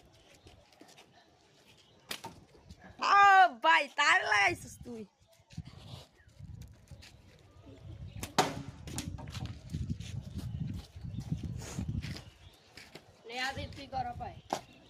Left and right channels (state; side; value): identical; both; correlation 1.00